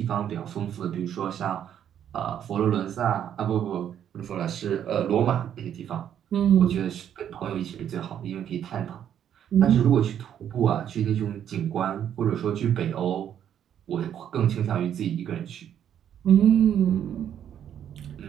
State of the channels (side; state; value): left; quieter; 9.7 dB